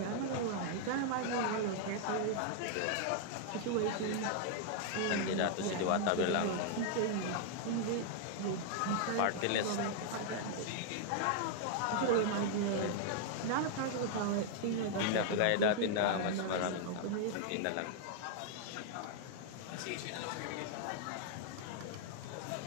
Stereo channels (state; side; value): different; both; correlation 0.00